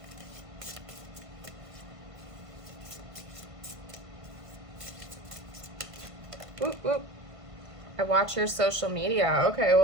Whoop, whoop. I watch your social media. Okay,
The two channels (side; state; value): left; late; 1.5 ms